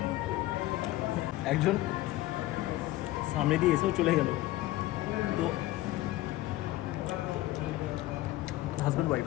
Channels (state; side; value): quieter; right; 16.7 dB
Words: একজন সামনে দিয়ে এসেও চলে গেল। তো হাজব্যান্ড ওয়াইফ